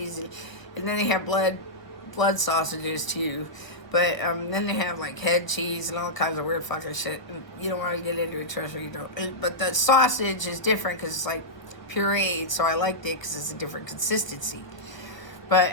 And then they have blood sausages too. But then they have like head cheese and all kinds of weird fucking shit. And you don't want to get into it, trust me, you don't. But the sausage is different because it's like pureed, so I liked it because it's a different consistency. But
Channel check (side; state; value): right; late; 1.0 ms